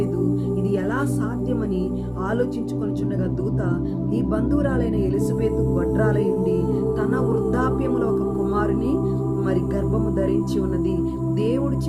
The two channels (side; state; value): both; identical; correlation 1.00